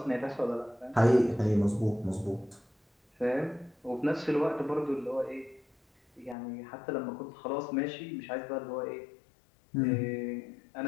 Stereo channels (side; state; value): right; drops out; at 6.4 s